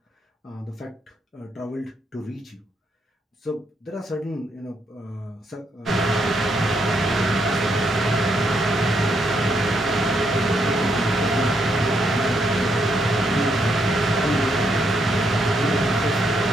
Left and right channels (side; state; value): both; normal; correlation 0.77